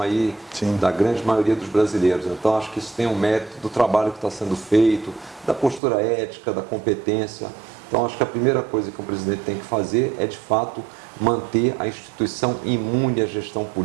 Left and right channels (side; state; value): left; drops out; at 5.8 s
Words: aí da grande maioria dos brasileiros. Então, acho que isso tem um mérito do trabalho que está sendo feito, da postura ética, da competência. Então, acho que a primeira coisa que um presidente tem que fazer é, de fato, manter a instituição imune à gestão